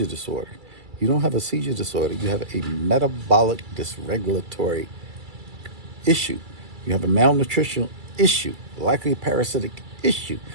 disorder. You don't have a seizure disorder. You have a metabolic dysregulatory issue. You have a malnutritional issue, likely a parasitic issue.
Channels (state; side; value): late; left; 2.3 ms